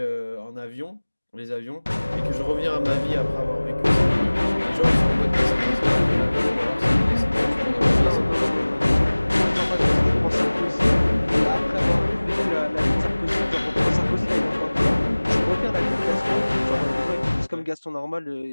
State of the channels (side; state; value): both; inverted; correlation -1.00